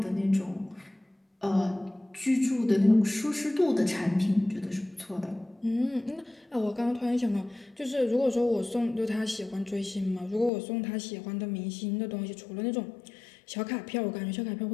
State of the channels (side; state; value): right; drops out; at 10.5 s